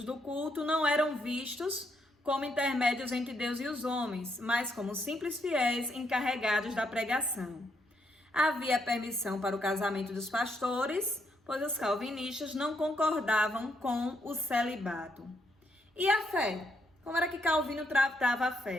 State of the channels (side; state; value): both; normal; correlation 0.76